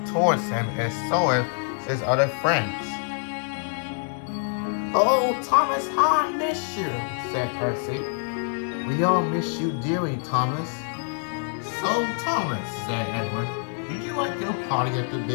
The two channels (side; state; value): right; silent; 56 dB below the other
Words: towards him, and so did his other friends. Oh, Thomas, how I miss you, said Percy. We all miss you dearly, Thomas. So, Thomas, said Edward, did you like your party at the